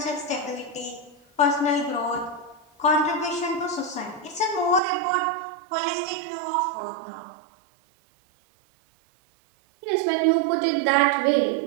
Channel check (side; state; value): left; drops out; at 4.8 s